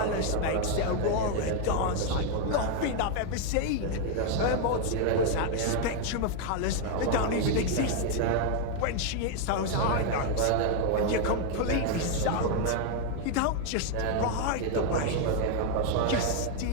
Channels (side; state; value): both; different; correlation 0.00